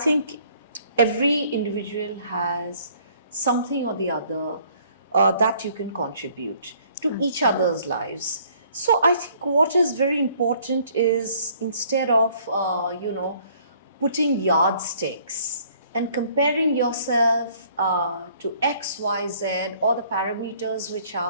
every individual has something or the other that you can contribute to each other's lives. So I think what is very important is, instead of, putting yardsticks and comparing yourself to X, Y, Z, or the parameters which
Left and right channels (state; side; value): inverted; both; correlation -0.60